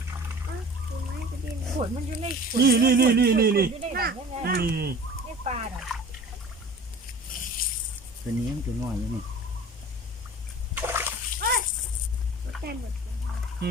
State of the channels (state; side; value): normal; both; correlation 0.42